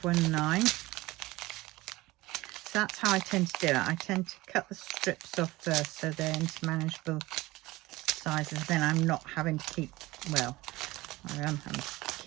So that's how I tend to do it. I tend to cut the strips off first so they're into manageable sizes. Then I'm not having to keep, well, I am having to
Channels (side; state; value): left; quieter; 19.7 dB